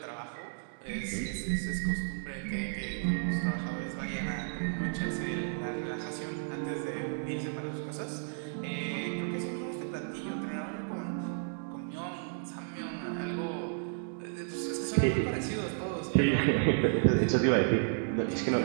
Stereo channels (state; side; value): silent; left; digital silence